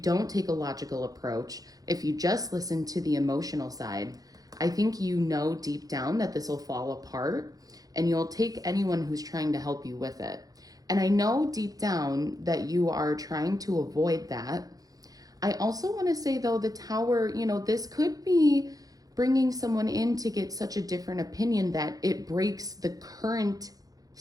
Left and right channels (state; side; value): late; left; 0.18 ms